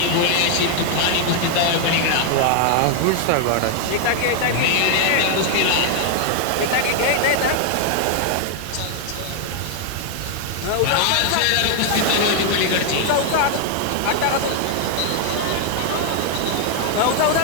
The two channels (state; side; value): different; both; correlation 0.00